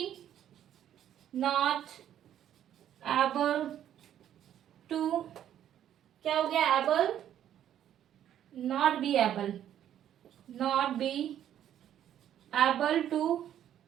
not able to, क्या हो गया, able, not be able, not be able to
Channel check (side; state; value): left; quieter; 10.7 dB